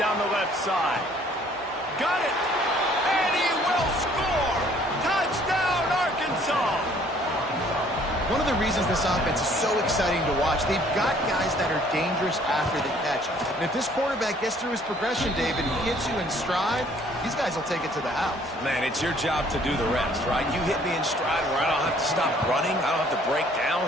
the left side. Got it. And he will score. Touchdown, Arkansas. One of the reasons this offense is so exciting to watch, they've got guys that are dangerous after the catch. And if this quarterback gets through his progression, David, he hits you in stride, these guys will take it to the house. Man, it's your job to do the rest, right? You hit me in stride where I don't have to stop running. I don't have to break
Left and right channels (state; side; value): normal; both; correlation 0.59